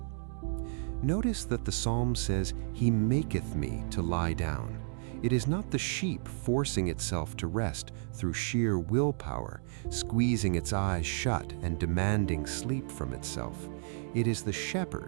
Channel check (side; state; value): left; silent; digital silence